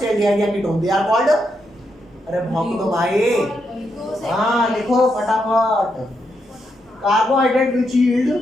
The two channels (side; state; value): both; normal; correlation 0.81